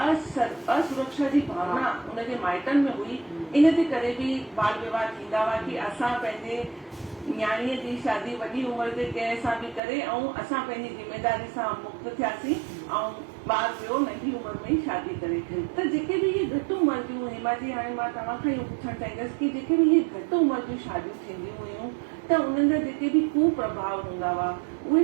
जी भावना उनजे माइटनि में हुई, इन जे करे बि बाल विवाह थींदा हुआ कि असां पंहिंजे न्याणीअ जी शादी वॾी उमिरि ते कंहिं सां बि करे ऐं असां पंहिंजी ज़िम्मेदारी सां मुक्त थियासीं ऐं ॿार वियो नंढी उमिरि में ई शादी करे। त जेके बि इहे घटि उमिरि जूं, हेमा जी, हाणे मां तव्हां खां इहो पुछणु चाहींदसि कि जेके बि इहे घटि उमिरि जूं शादियूं थींदियूं हुयूं, त उन्हनि जा जेके बि कुप्रभाव हूंदा हुआ उहे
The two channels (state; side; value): drops out; left; at 9.8 s